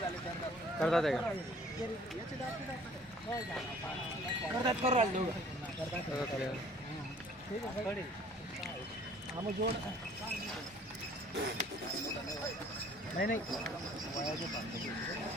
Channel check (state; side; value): normal; both; correlation 0.54